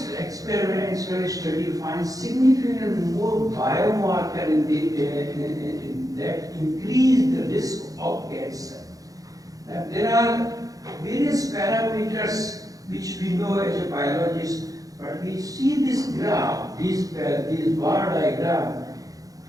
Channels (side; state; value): left; late; 0.17 ms